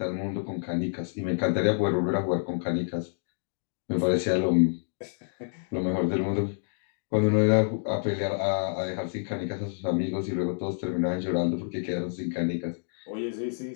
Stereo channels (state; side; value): silent; right; digital silence